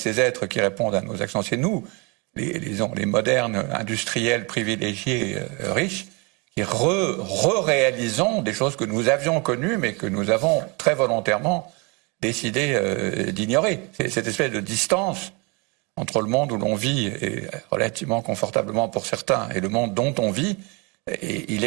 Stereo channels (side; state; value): left; quieter; 29.8 dB